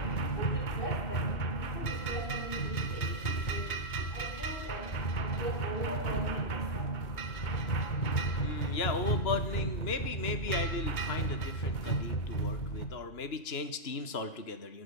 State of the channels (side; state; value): right; late; 2.9 ms